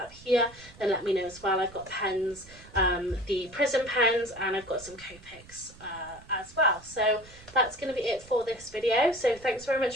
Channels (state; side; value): noise; right; rumble, 21 dB below the sound